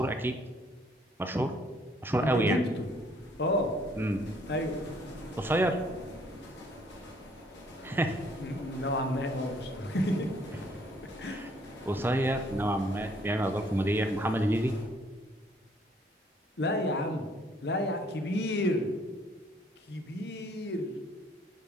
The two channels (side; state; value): both; normal; correlation 0.63